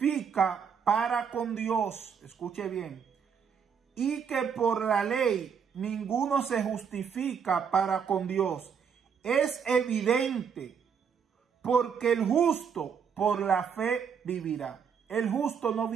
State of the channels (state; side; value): quieter; left; 6.9 dB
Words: para con Dios. Escuche bien. Y que por la ley ninguno se justifica para con Dios. Es evidente, porque el justo por la fe vivirá. El justo no